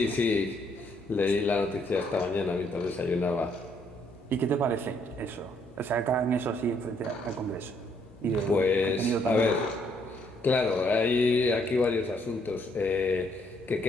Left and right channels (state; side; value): normal; both; correlation 0.69